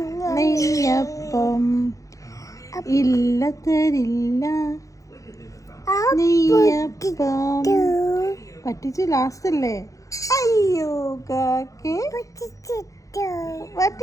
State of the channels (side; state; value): right; late; 0.16 ms